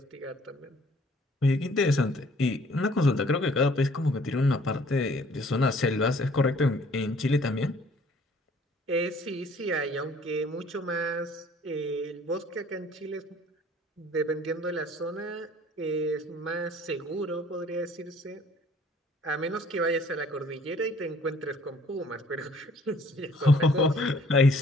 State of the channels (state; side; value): normal; both; correlation 0.57